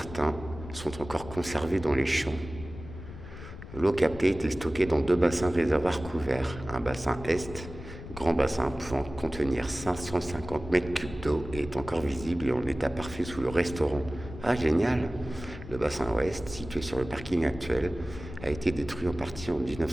sont encore conservés dans les champs. L'eau captée était stockée dans 2 bassins réservoirs couverts. Un bassin est, grand bassin pouvant contenir 550 mètres cubes d'eau, est encore visible et en état parfait sous le restaurant. Ah, génial! Le bassin ouest, situé sur le parking actuel, a été détruit en partie en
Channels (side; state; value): left; noise; rumble, 13 dB below the sound